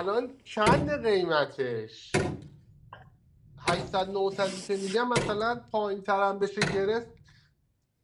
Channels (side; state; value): both; identical; correlation 1.00